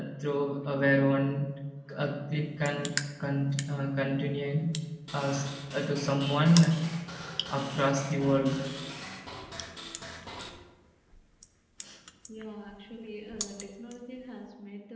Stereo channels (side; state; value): both; identical; correlation 1.00